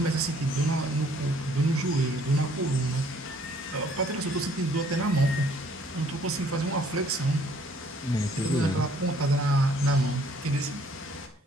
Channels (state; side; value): normal; both; correlation 0.61